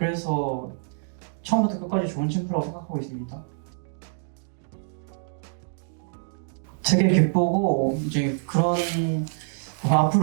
처음부터 끝까지 좋은 챔프라고 생각하고 있습니다. 되게 기쁘고 이제 그런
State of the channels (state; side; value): silent; left; digital silence